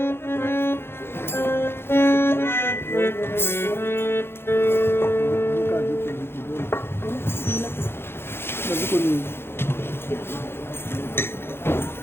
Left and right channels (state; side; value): late; right; 0.11 ms